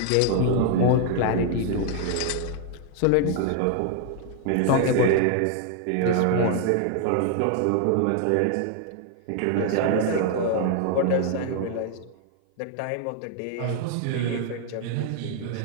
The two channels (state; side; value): different; both; correlation 0.00